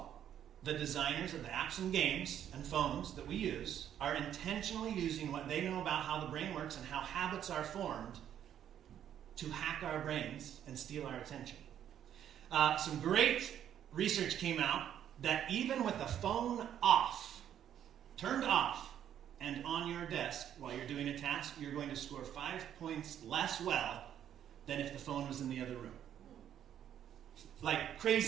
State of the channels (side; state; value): left; quieter; 10.1 dB